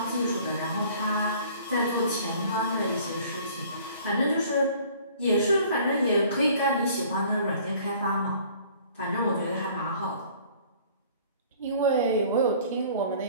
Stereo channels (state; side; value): inverted; both; correlation -0.53